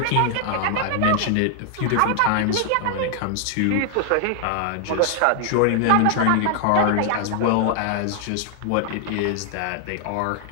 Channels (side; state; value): both; different; correlation 0.00